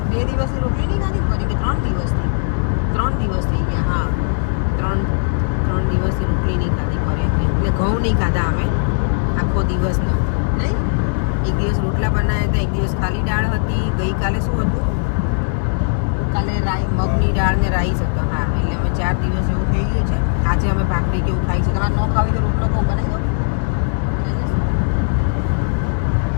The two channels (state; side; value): silent; right; digital silence